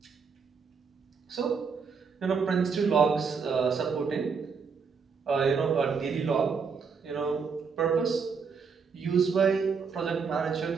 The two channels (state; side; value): quieter; left; 5.6 dB